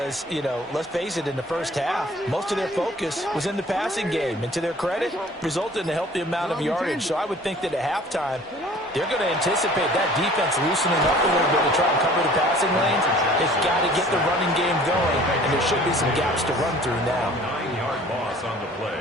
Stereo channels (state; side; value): normal; both; correlation 0.50